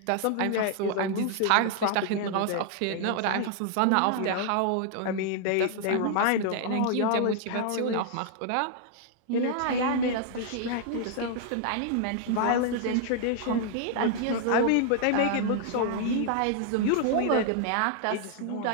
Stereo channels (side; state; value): both; different; correlation 0.00